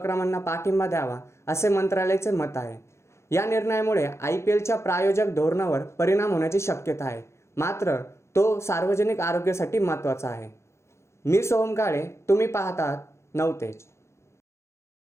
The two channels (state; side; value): late; right; 0.13 ms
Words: पाठिंबा द्यावा, असे मंत्रालयाचे मत आहे. या निर्णयामुळे IPLच्या प्रायोजक धोरणावर परिणाम होण्याची शक्यता आहे, मात्र तो सार्वजनिक आरोग्यासाठी महत्त्वाचा आहे. मी सोहम काळे, तुम्ही पाहतात नवतेज.